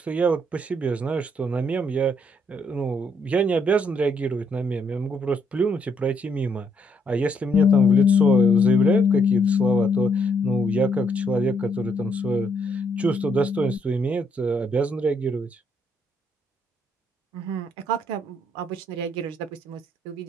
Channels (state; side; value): normal; both; correlation 0.73